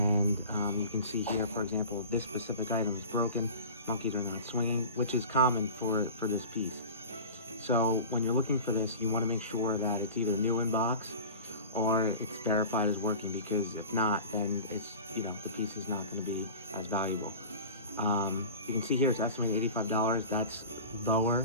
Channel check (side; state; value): both; inverted; correlation -0.36